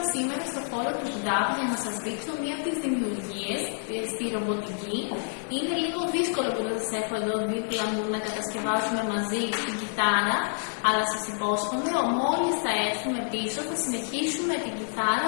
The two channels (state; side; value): silent; right; digital silence